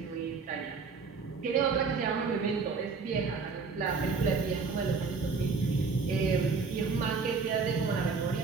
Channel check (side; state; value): left; quieter; 4.8 dB